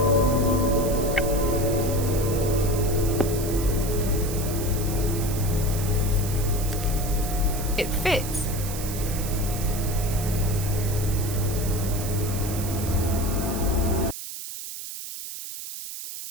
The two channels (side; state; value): right; noise; hiss, 9 dB below the sound